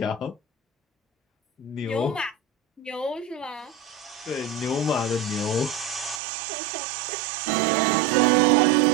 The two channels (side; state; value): left; drops out; at 6.2 s